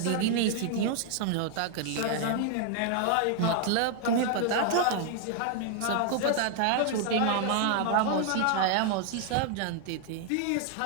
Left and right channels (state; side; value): different; both; correlation 0.00